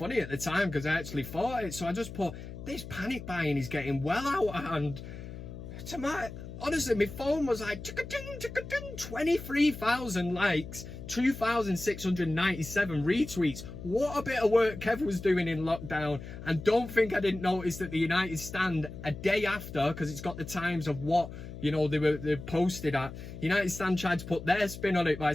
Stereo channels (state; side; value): noise; left; hum, 11 dB below the sound